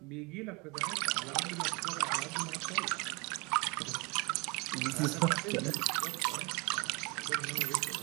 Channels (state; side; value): quieter; left; 27.9 dB